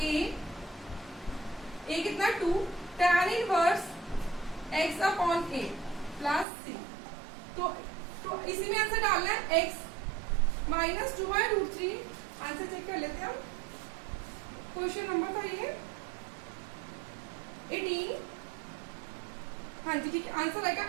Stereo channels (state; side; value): drops out; left; at 6.5 s